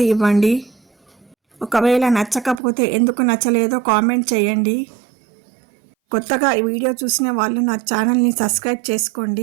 ఇవ్వండి. ఒకవేళ నచ్చకపోతే ఎందుకు నచ్చలేదో కామెంట్ చేయండి. కొత్తగా ఈ వీడియో చూసిన వాళ్ళు నా ఛానల్ని సబ్స్క్రైబ్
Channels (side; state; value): left; drops out; at 2.6 s